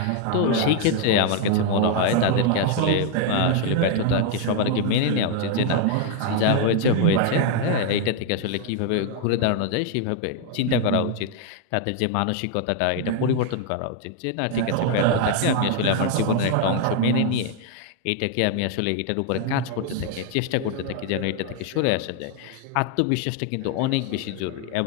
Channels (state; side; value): different; both; correlation 0.00